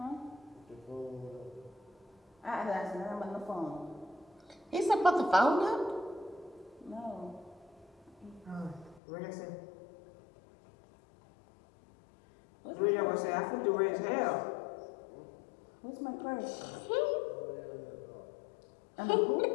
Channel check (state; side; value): drops out; right; at 9.0 s